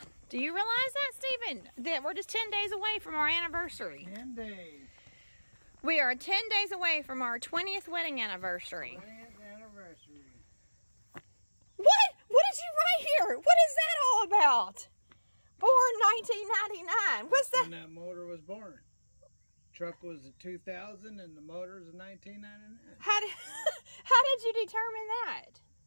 Do you realize that, Stephen? That we're just 10 days away from our anniversary. 10 days. We are 10 days away from our 20th wedding anniversary. 20th anniversary. What? What did you write here? What is that all about? Born 1999. What's that? When that motor was born. Truck was a 2000 and the motor is a 1999. How did you determine that?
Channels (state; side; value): inverted; both; correlation -1.00